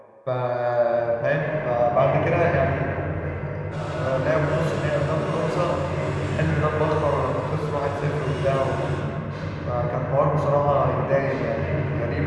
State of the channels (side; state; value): both; identical; correlation 1.00